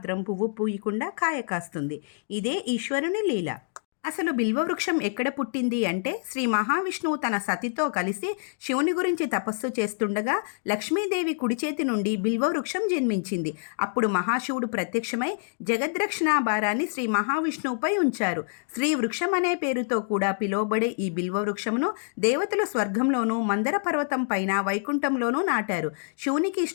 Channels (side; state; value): right; silent; digital silence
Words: పువ్వు పూయకుండా కాయ కాస్తుంది. ఇదే ఈశ్వరుని లీల. అసలు బిల్వవృక్షం ఎక్కడ పుట్టింది అంటే, శ్రీ మహావిష్ణువు తన సతితో కలిసి శివుని గురించి తపస్సు చేస్తుండగా లక్ష్మీదేవి కుడి చేతి నుండి బిల్వవృక్షం జన్మించింది. అప్పుడు మహాశివుడు ప్రత్యక్షమై జగద్రక్షణ భారాన్ని శ్రీ మహావిష్ణువుపై ఉంచారు. శ్రీ వృక్షం అనే పేరుతో కూడా పిలువబడే ఈ బిల్వవృక్షమును దేవతలు స్వర్గంలోనూ, మందర పర్వతం పైన వైకుంఠంలోనూ నాటారు. శివునికి